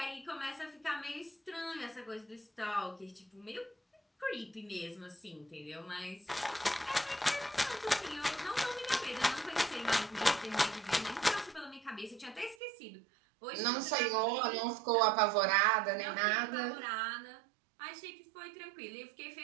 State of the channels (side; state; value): left; drops out; at 12.6 s